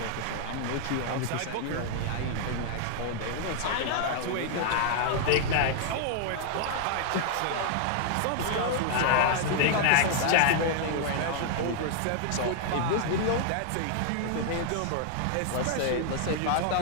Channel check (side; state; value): both; different; correlation 0.00